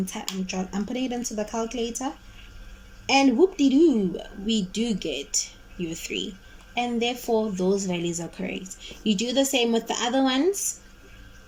putting it into the calculator, and whoop-de-doo, we do get your 3, and therefore those values are correct. You do the same with the other ones,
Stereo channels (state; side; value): identical; both; correlation 1.00